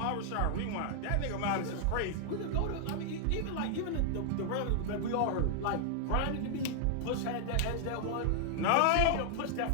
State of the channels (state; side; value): different; both; correlation 0.00